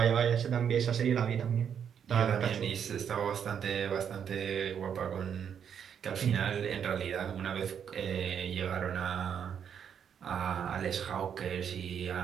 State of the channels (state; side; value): quieter; left; 8.0 dB